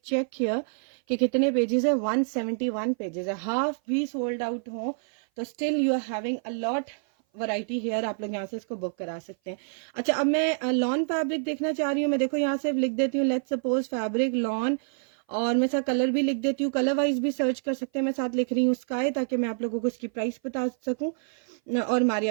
चेक हियर कि कितने पेजेस है, 171 पेजेस है। हाफ भी सोल्ड आउट हो तो still you are having a lot variety here, आप लोग यहाँ से इसको बुक करा सकते हैं। अच्छा, अब मैं लॉन फैब्रिक देखना चाह रही हूँ। मैं देखो यहाँ से लिख देती हूँ, लेट्स सपोज फैब्रिक लॉन, और मैं साथ कलर भी लिख देती हूँ, कलर वाइज भी सर्च कर सकते हैं। मैं साथ लिख रही हूँ स्काई, ताकि मैं आप लोगों को इसकी प्राइस बता सकूं। और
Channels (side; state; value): left; silent; 57 dB below the other